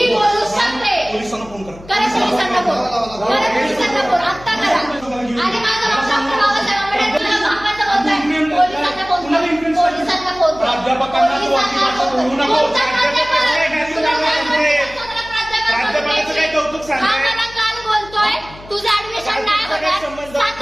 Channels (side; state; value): left; noise; hum, 19 dB below the sound